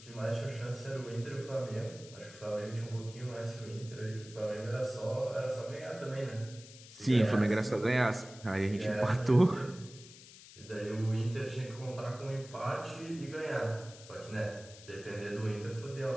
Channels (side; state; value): left; noise; hiss, 18 dB below the sound